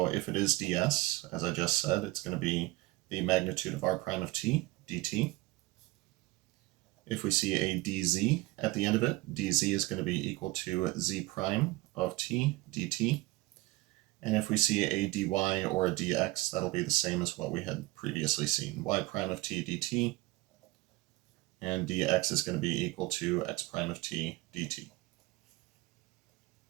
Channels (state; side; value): quieter; left; 20.4 dB